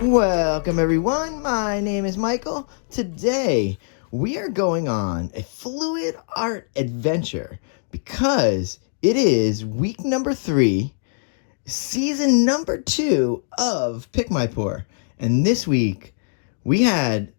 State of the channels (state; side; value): silent; right; digital silence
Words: Welcome everyone, my name is Michael. Today we are going on a fluid art adventure because it is week number 3, season number 2 of Pick My Pour. And this week we had